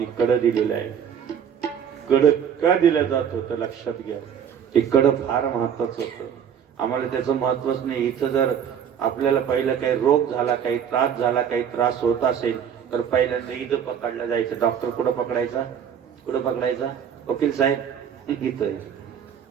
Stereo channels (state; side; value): quieter; left; 8.2 dB